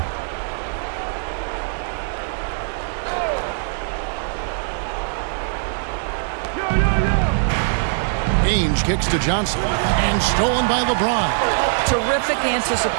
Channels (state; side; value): silent; left; 57 dB below the other